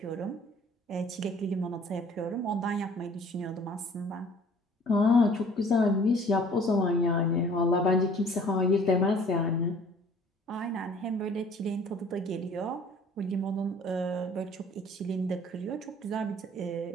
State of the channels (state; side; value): normal; both; correlation 0.53